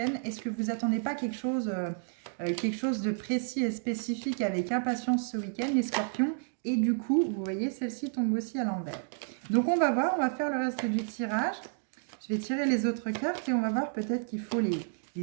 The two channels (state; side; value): silent; left; digital silence